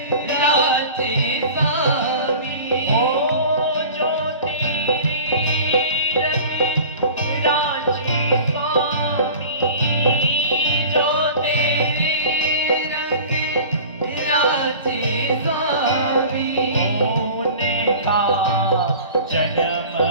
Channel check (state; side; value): inverted; both; correlation -0.40